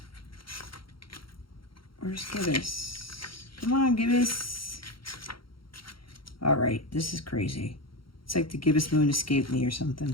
Where's gibbous? Come on, gibbous. All right, this is crazy. It's like the gibbous moon escaped me or something.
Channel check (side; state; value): right; late; 0.73 ms